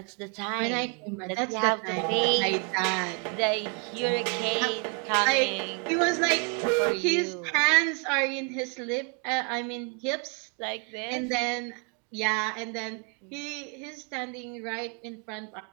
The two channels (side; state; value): left; quieter; 37.2 dB